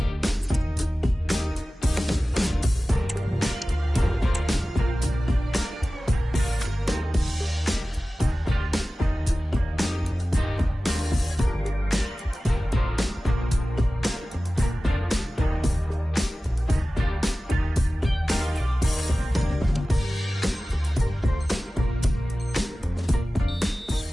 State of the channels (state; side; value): normal; both; correlation 0.96